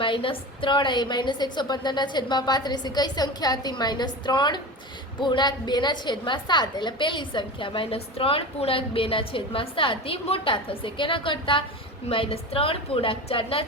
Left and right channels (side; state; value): both; normal; correlation 0.29